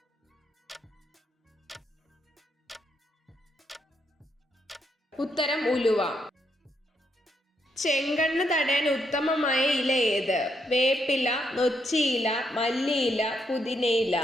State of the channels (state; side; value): normal; both; correlation 0.77